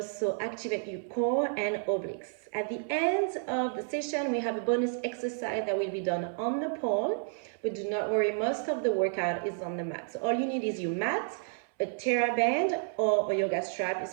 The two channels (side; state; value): left; silent; 57 dB below the other